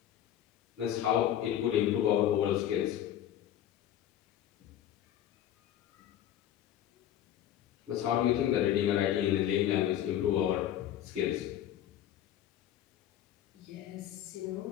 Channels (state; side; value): quieter; right; 11.3 dB